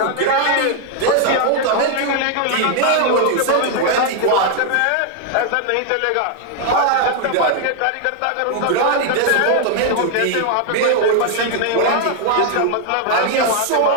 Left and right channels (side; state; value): both; different; correlation 0.00